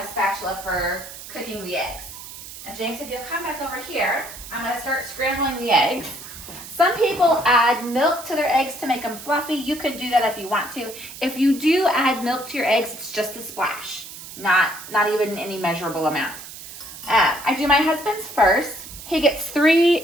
a spatula for cooking the eggs. And James, if you'll come back over here, I'm going to start scrambling the eggs. Some people add milk to their eggs to make them fluffy. You could do that if you want to. If you do add milk to your eggs, it's just a splash, not even any measurable amount. I do my husband's first. He gets 3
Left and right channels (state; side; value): noise; right; hiss, 13 dB below the sound